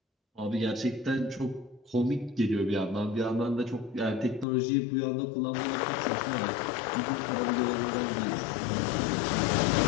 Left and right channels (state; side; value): drops out; right; at 4.5 s